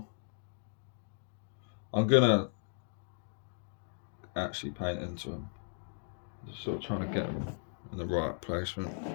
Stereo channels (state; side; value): silent; right; digital silence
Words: I'm gonna actually paint into them, just sort of trying to get them in the right placement.